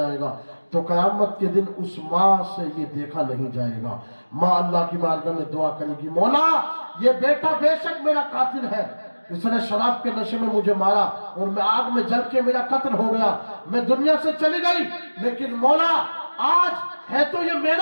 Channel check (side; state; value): both; inverted; correlation -1.00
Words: گا، تو قیامت کے دن اس ماں سے یہ دیکھا نہیں جائے گا۔ ماں اللہ کی بارگاہ میں دعا کرے گی، مولا یہ بیٹا بے شک میرا قاتل ہے، اس نے شراب کے نشے میں مجھے مارا اور میں آگ میں جل کے میرا قتل ہو گیا، میں دنیا سے چلی گئی، لیکن مولا آج ہے تو یہ